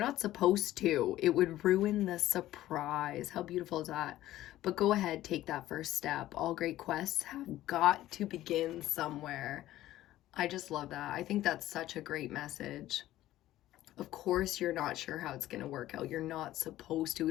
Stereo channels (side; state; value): right; quieter; 14.6 dB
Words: supposed to. It would ruin the surprise. How beautiful is that? But go ahead, take that first step. All great quests have got to begin somewhere. I just love that. I think that's such a great message. Of course, you're not sure how it's going to work out. You're not supposed to.